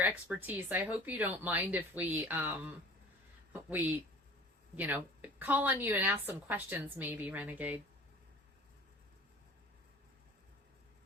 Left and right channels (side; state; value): both; normal; correlation 0.44